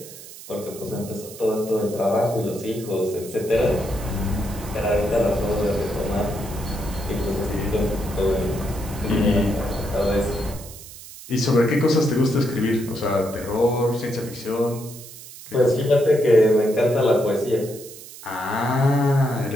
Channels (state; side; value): noise; right; hiss, 16 dB below the sound